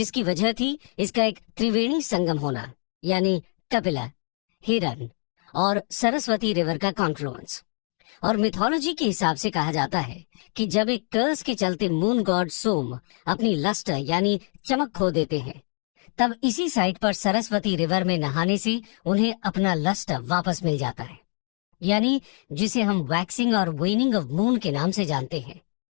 वजह थी इसका एक त्रिवेणी संगम होना, यानी कपिला, हिरन और सरस्वती रिवर का कॉन्फ्लुएंस। और मिथोलॉजी के हिसाब से कहा जाता है कि जब एक कर्स के चलते मून गॉड सोम अपनी लस्टर यानी चमक खो देते हैं, तब इसी साइट पर सरस्वती रिवर में नहाने से उन्हें अपना लस्टर वापस मिल जाता है, यानी जिसे हम वैक्सिंग और वेनिंग ऑफ मून के नाम से जानते हैं।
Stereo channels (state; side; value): quieter; right; 38.8 dB